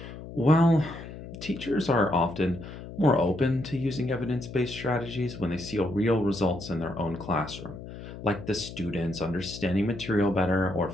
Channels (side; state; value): left; noise; hum, 12 dB below the sound